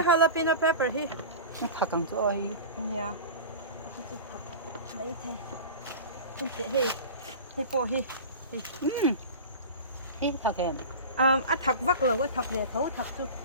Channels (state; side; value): inverted; both; correlation -0.33